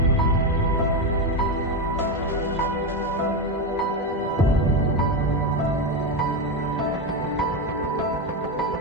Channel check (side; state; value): both; normal; correlation 0.12